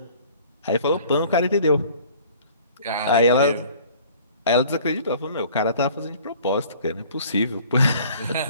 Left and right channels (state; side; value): inverted; both; correlation -0.51